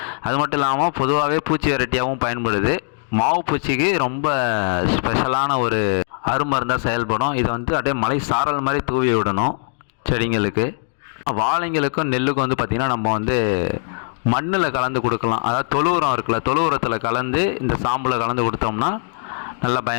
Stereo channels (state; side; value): silent; right; 62 dB below the other